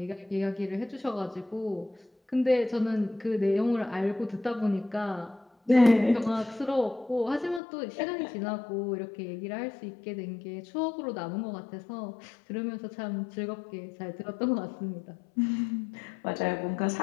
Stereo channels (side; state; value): right; drops out; at 7.6 s